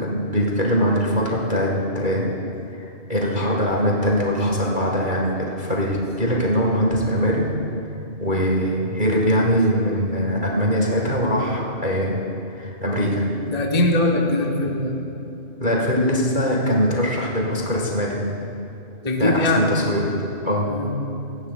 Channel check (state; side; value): late; left; 2.3 ms